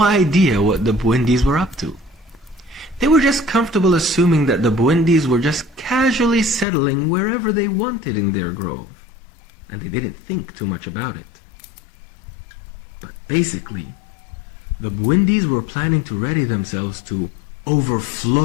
idea what the Bwindis were up to. They were just comfortable assuming that the Bwindis were just casually settling wherever they wanted in their grove, and they didn't think too much about it. But basically, the Bwindis were planning to ready themselves to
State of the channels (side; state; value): right; drops out; at 6.7 s